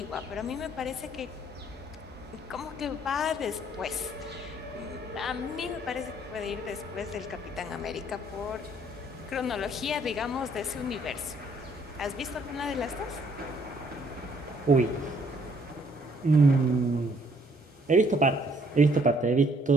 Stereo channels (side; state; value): both; normal; correlation 0.64